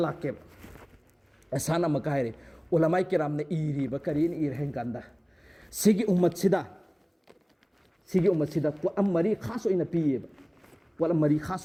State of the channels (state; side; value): identical; both; correlation 1.00